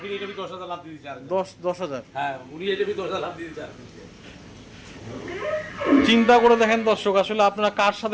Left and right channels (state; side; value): identical; both; correlation 1.00